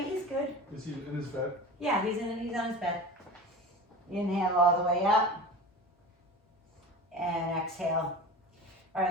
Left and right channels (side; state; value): both; normal; correlation 0.33